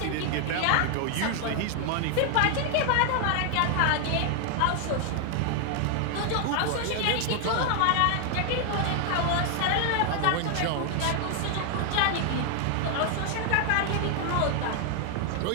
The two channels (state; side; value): different; both; correlation 0.00